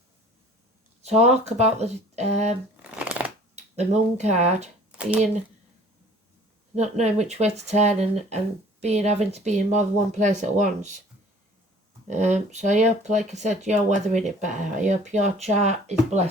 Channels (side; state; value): both; normal; correlation 0.50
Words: Talk about the moon card being not knowing which way to turn and having to be in more than one place at once. So I hope, like I said, you're weathering it better. I hope your chart is